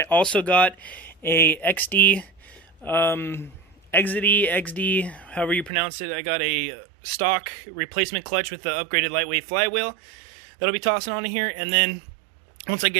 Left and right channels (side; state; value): left; drops out; at 5.7 s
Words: also got a XD, XD, however you pronounce it. I got a stock replacement clutch with the upgraded lightweight flywheel that'll be tossing onto here. And then once I